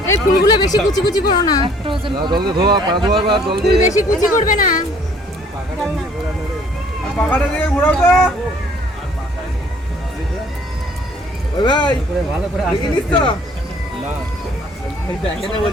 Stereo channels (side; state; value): both; normal; correlation 0.58